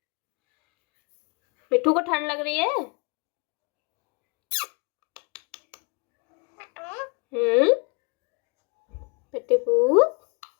मिठू को ठंड लग रही है? कटपूत,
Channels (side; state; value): right; quieter; 32.2 dB